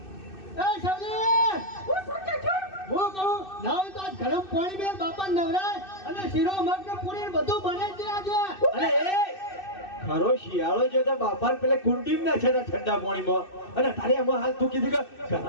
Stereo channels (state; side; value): late; right; 2.6 ms